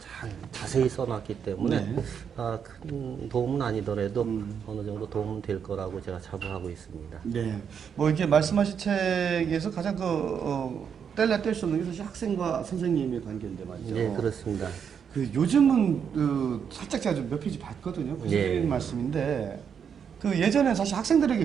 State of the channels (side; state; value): left; quieter; 7.4 dB